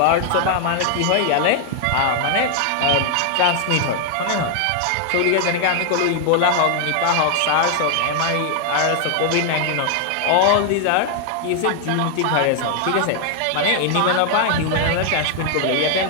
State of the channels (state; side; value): different; both; correlation 0.00